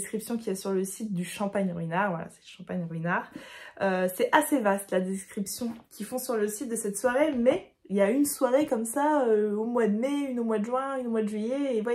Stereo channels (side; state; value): both; identical; correlation 1.00